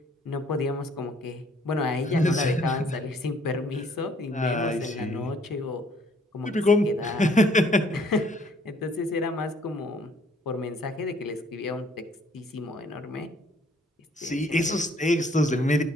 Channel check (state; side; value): normal; both; correlation 0.62